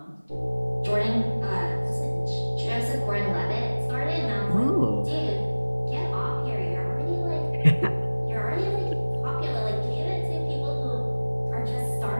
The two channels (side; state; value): both; inverted; correlation -1.00